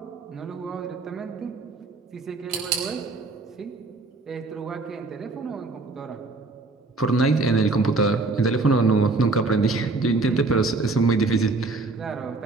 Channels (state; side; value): quieter; left; 3.5 dB